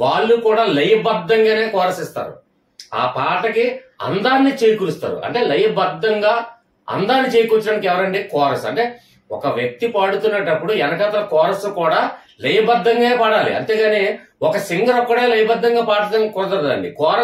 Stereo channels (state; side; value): identical; both; correlation 1.00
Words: కూడా లయబద్ధంగానే కోరస్ ఇస్తారు. ఆ పాటకి అందాన్ని చేకూరుస్తారు. అంటే లయబద్ధంగా అందాన్ని చేకూర్చడానికి ఎవరండి? కోరస్. అంటే ఒక వ్యక్తి పాడుతున్నప్పుడు వెనకాతల కోరస్ కూడా లయబద్ధంగా పాడాలి, అంతేగాని ఒక సింగర్ ఒక్కడే లయబద్ధంగా పాడటం కుదరదండి.